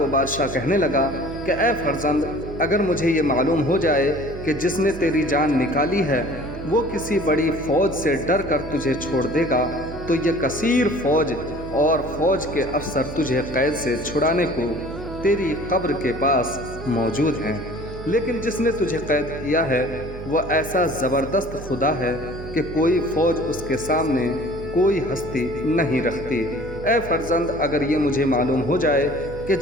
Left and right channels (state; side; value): noise; right; hum, 11 dB below the sound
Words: بادشاہ کہنے لگا کہ اے فرزند، اگر مجھے یہ معلوم ہو جائے کہ جس نے تیری جان نکالی ہے وہ کسی بڑی فوج سے ڈر کر تجھے چھوڑ دے گا تو یہ کثیر فوج اور فوج کے افسر تجھے قید سے چھڑانے کو تیری قبر کے پاس موجود ہیں، لیکن جس نے تجھے قید کیا ہے وہ ایسا زبردست خدا ہے کہ کوئی فوج اس کے سامنے کوئی ہستی نہیں رکھتی۔ اے فرزند، اگر یہ مجھے معلوم ہو جائے کہ